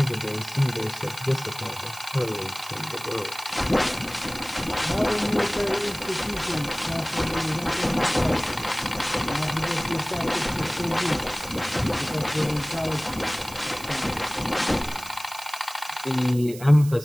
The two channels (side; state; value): right; noise; hiss, 15 dB below the sound